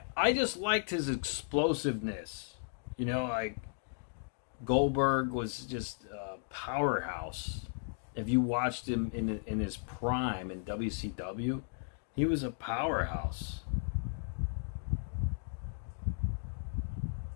I just liked his explosiveness. You know, like Goldberg was just a powerhouse. If you watched him in his prime in WCW, he was a powerhouse.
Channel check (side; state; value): right; silent; digital silence